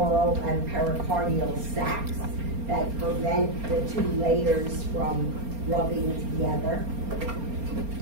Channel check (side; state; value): left; late; 4.3 ms